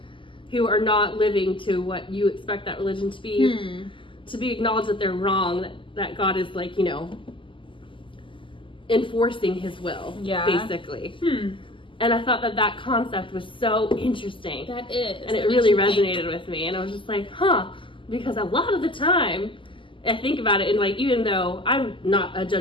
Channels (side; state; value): right; late; 0.25 ms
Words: who are not living to what you expect that religion to be acknowledged that they're wrong, that God is like, you know, enforcing his will, basically. And I thought that concept was so interesting. That is. And it really resonated with me. And I was just like, because a lot of the time, I think about it, and like, even though I'm not a